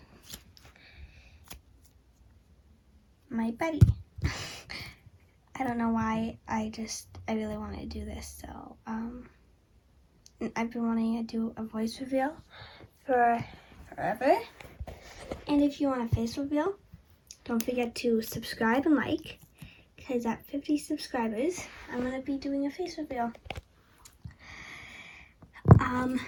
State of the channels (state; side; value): identical; both; correlation 1.00